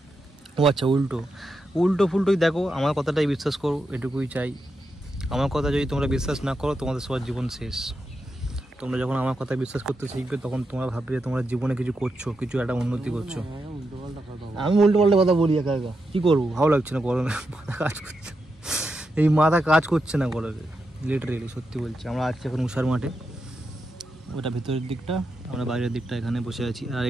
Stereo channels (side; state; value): both; normal; correlation 0.86